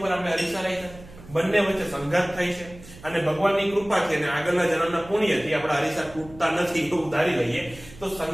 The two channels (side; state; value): right; noise; hum, 19 dB below the sound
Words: આપણે અરીસા રાખ્યા, બંને વચ્ચે સંઘાત થાય છે. અને ભગવાનની કૃપાથી અને આગળના જન્મના પુણ્યથી આપણા અરીસા તૂટતા નથી એવું ધારી લઈએ. તો